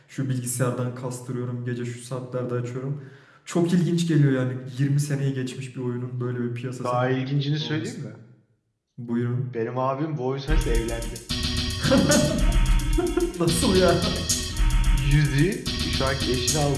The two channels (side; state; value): both; identical; correlation 1.00